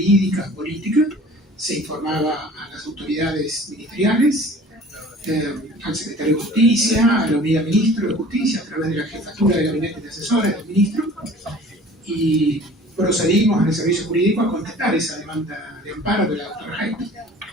política, se informaba a las autoridades ministeriales, al secretario de Justicia, a la unidad ministro de Justicia, a través de la jefatura de gabinete de asesores del ministro, y procedimos en el servicio jurídico a contestar esa demanda de amparo de la doctora Hayton.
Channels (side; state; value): both; normal; correlation 0.46